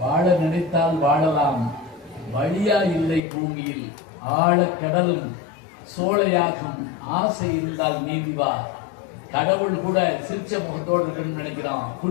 வாழ நினைத்தால் வாழலாம், வழியா இல்லை பூமியில் ஆழ கடலும் சோழையாகும், ஆசை இருந்தால் நீதிவா. கடவுள் கூட சிரிச்ச முகத்தோடு இருக்குன்னு நினைக்கிறான்.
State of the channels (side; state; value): right; drops out; at 3.2 s